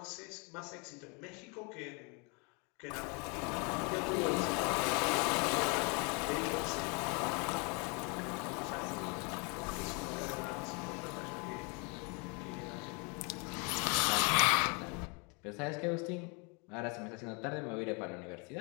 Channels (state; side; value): quieter; right; 32.7 dB